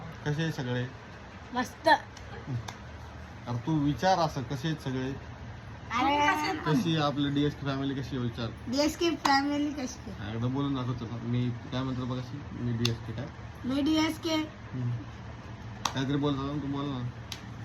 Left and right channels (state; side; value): identical; both; correlation 1.00